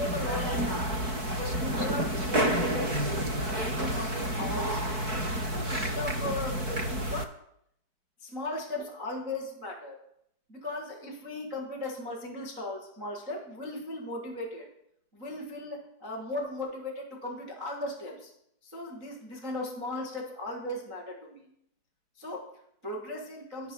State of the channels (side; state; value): left; late; 4.6 ms